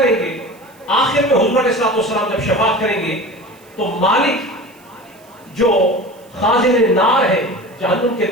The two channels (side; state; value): right; noise; hiss, 29 dB below the sound